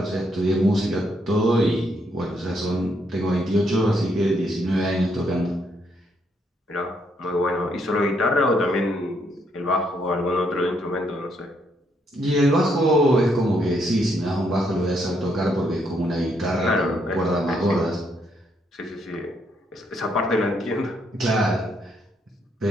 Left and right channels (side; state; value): both; normal; correlation 0.74